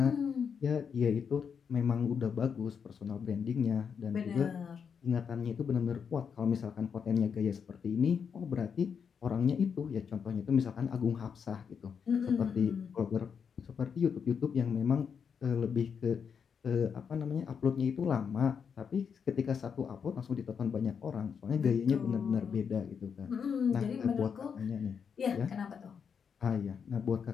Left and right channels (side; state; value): right; quieter; 6.7 dB